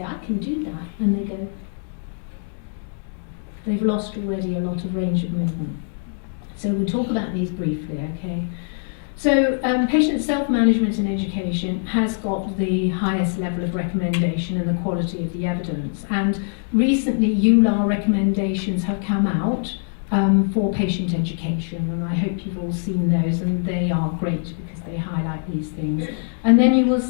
I can do that. And they go, they've lost already a lot of range of movement. So we'll talk about these briefly, okay? So patient self-management and education has got the highest level of recommendation and the quality of the evidence. And recently, EULAR recommendations have come out for patient education, and I hope you've all seen those, and they are great because they highlight these things. And then you will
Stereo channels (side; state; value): right; silent; digital silence